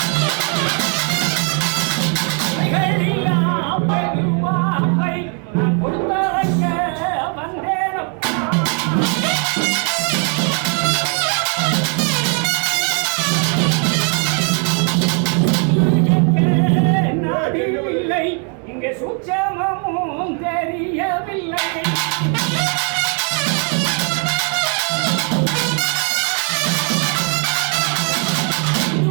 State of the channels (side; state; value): left; quieter; 40.0 dB